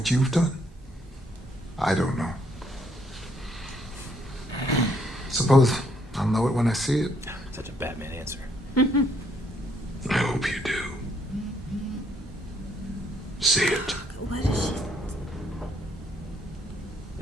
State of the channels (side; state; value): both; normal; correlation 0.70